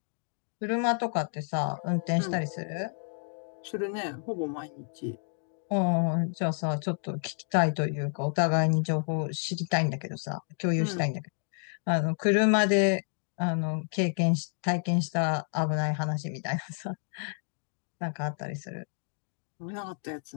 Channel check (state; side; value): silent; right; 58 dB below the other